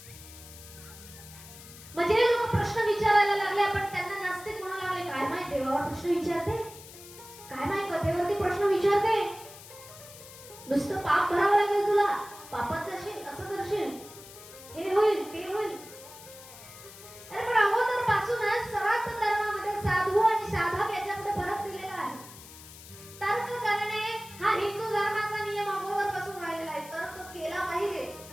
म्हणजे लोक प्रश्न विचारायला लागले, पण त्यांना नास्तिक म्हणू लागले. काय माहित देवावर प्रश्न विचारते, काय माहित कथेवरती प्रश्न विचारते, नुसतं पाप भरावं लागेल तुला, पापाचं असेल, असं करशील, हे होईल ते होईल. अरे पण अगोदर पासूनच सर्वात धर्मामध्ये साधू आणि साधक याच्यामध्ये फरक दिलेला आहे. तर्क करणे हा हिंदू धर्माचा नियम अगोदर पासून राहिलेला आहे. तर्क केला पाहिजे.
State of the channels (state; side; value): noise; left; hiss, 17 dB below the sound